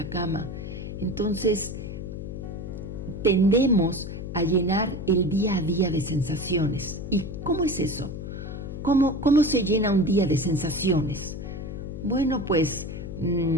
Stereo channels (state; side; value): noise; left; hum, 7 dB below the sound